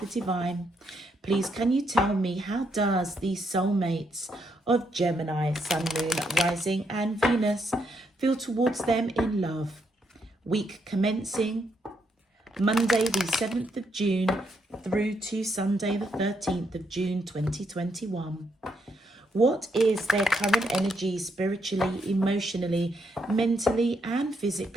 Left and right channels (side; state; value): both; normal; correlation 0.77